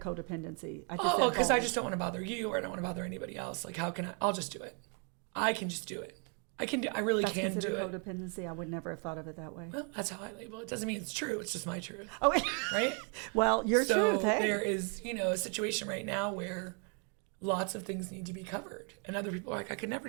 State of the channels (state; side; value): quieter; left; 38.6 dB